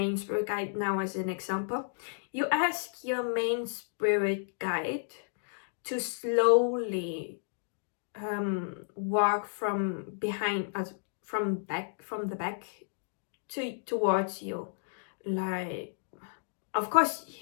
spirit guide now as an example. You ask your main spirit guide to slowly walk from behind us, from the back towards you. Like, of course,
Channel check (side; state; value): right; silent; digital silence